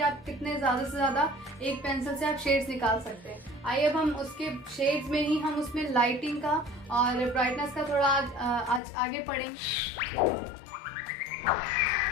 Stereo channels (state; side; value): drops out; right; at 8.8 s